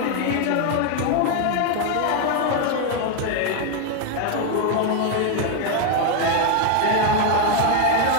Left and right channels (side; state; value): both; different; correlation 0.01